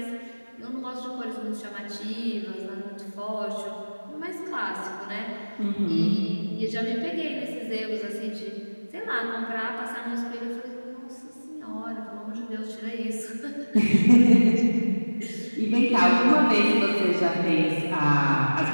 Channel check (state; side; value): inverted; both; correlation -1.00